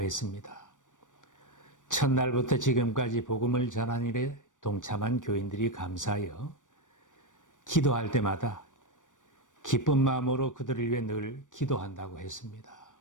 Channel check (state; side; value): late; right; 0.87 ms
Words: 첫날부터 지금까지 복음을 전하는 일에 동참한 교인들이 감사하여 기도할 때마다 기쁜 마음으로 그들을 위해 늘 기도한다고 했습니다.